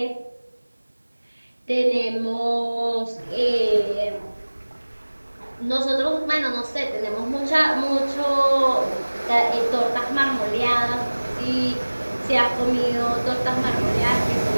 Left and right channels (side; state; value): both; inverted; correlation -1.00